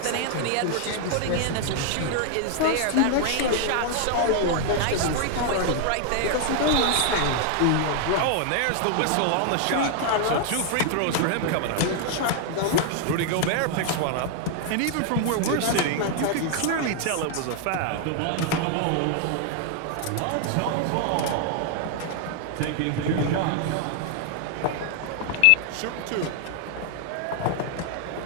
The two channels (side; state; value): both; different; correlation 0.00